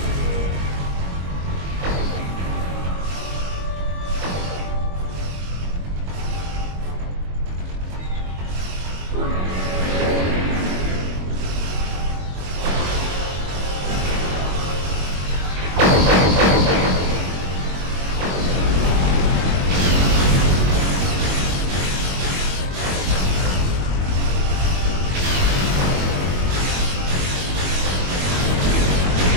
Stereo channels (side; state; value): left; late; 22 ms